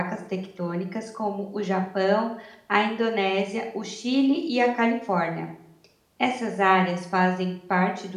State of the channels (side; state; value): both; identical; correlation 1.00